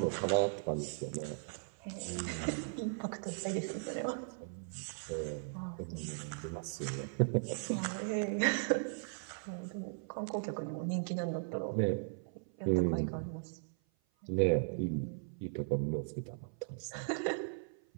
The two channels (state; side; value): silent; left; 53 dB below the other